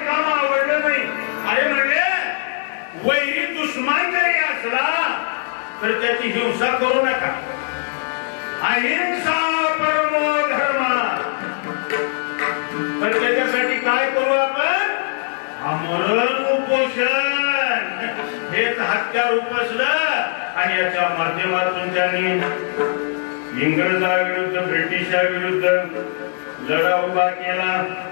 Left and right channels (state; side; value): silent; right; digital silence